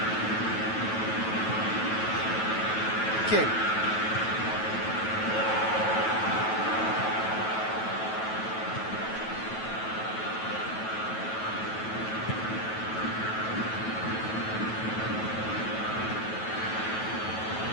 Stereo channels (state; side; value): late; right; 9.2 ms